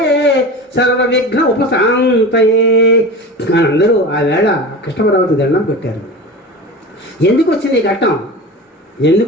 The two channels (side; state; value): both; normal; correlation 0.31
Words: సర్వ విఘ్న ఉపశాంతయే అని అందరూ ఆ వేళ కృష్ణ పరమాత్మ దండం పెట్టారు. ఎందుకు వచ్చింది ఈ ఘట్టం?